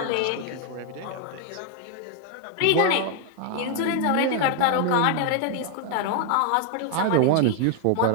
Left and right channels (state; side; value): different; both; correlation 0.00